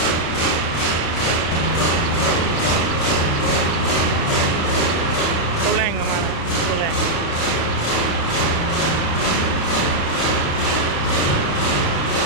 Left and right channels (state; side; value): late; right; 36 ms